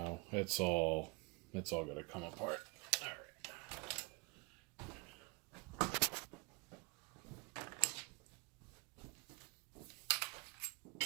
it's all gonna come apart. All right.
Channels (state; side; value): quieter; left; 29.6 dB